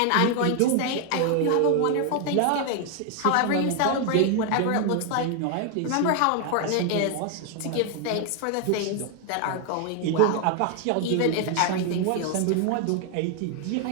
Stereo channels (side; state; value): both; different; correlation 0.00